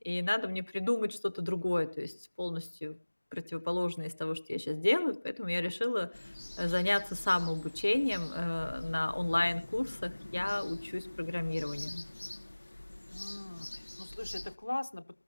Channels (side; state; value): both; inverted; correlation -1.00